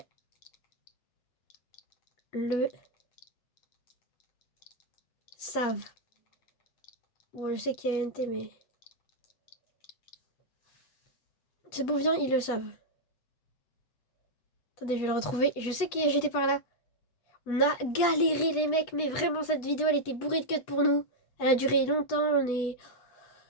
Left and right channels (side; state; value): right; late; 8.2 ms